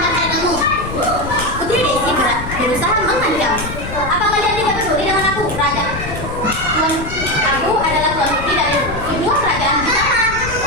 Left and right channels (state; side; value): noise; left; rumble, 9 dB below the sound